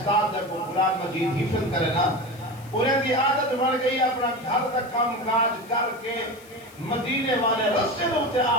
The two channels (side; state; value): left; noise; hiss, 23 dB below the sound